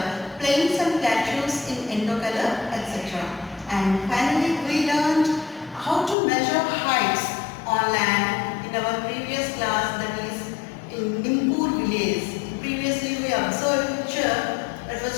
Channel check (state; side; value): drops out; right; at 6.2 s